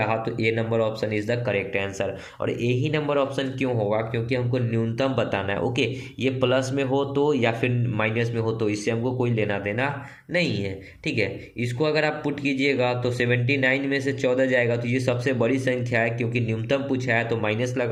तो A number option is the correct answer. और ए ही नंबर ऑप्शन क्यों होगा, क्योंकि हमको न्यूनतम बताना है। ओके, ये प्लस में हो तो या फिर माइनस में हो तो इससे हमको कोई लेना देना नहीं है। ठीक है, इसको अगर आप पुट कीजिएगा तो 79 में से 14 जाएगा तो ये सबसे बड़ी संख्या है, क्योंकि न्यूनतम पूछा है तो माइनस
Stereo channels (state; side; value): identical; both; correlation 1.00